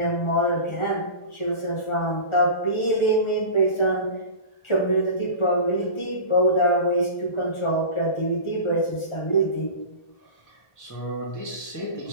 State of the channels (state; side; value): late; right; 1.4 ms